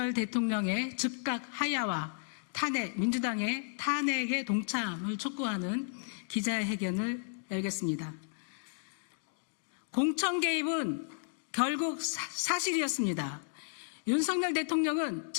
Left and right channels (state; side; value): silent; right; digital silence